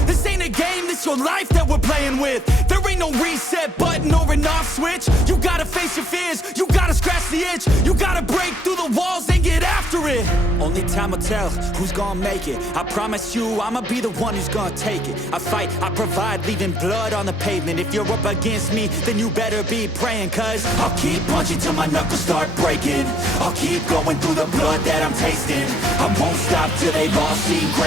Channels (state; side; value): normal; both; correlation 0.68